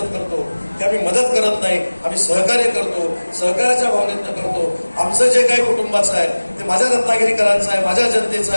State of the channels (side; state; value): both; inverted; correlation -1.00